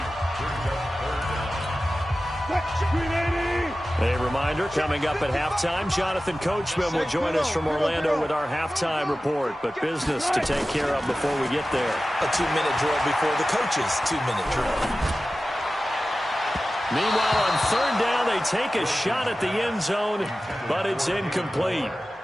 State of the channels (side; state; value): both; normal; correlation 0.95